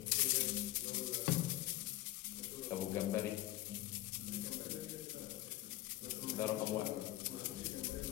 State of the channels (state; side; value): quieter; right; 16.3 dB